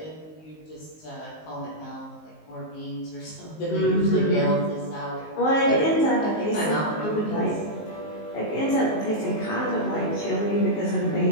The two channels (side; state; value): right; late; 19 ms